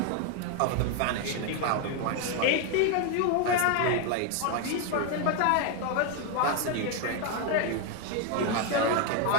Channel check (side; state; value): both; different; correlation 0.01